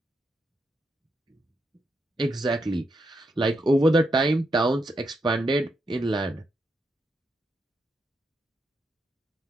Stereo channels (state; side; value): normal; both; correlation 0.82